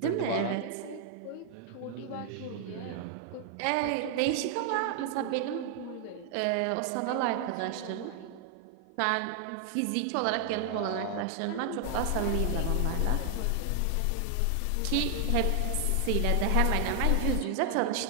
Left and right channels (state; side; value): different; both; correlation 0.00